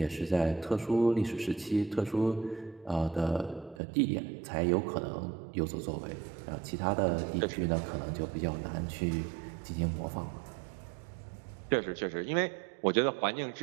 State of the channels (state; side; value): drops out; left; at 3.8 s